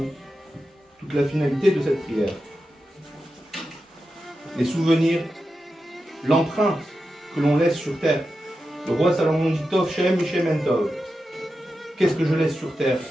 toute la finalité de cette prière. Les souvenirs, l'empreinte que l'on laisse sur terre. Le roi Salomon dit Tov Shem Mishem En Tov. Qu'est-ce que je laisse sur terre?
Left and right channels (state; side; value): normal; both; correlation 0.90